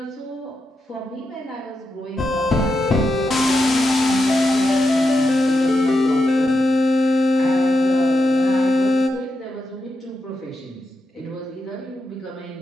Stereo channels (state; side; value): normal; both; correlation 0.86